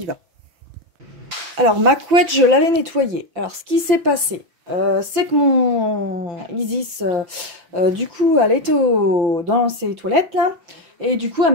va. Alors, ma couette, je l'avais nettoyée. Alors, ce qui s'est passé, c'est que mon Isis, du coup, elle était dans ses toilettes, là. Et du coup, elle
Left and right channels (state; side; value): late; left; 5.8 ms